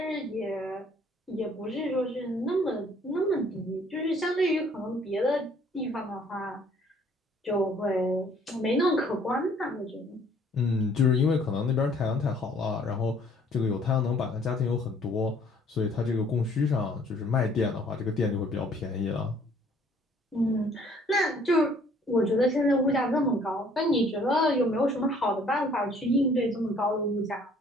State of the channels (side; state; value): both; normal; correlation 0.59